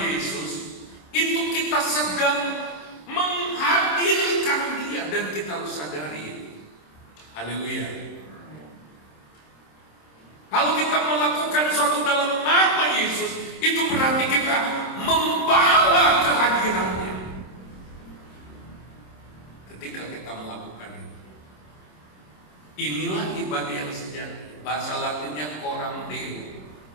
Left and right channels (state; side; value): late; right; 26 ms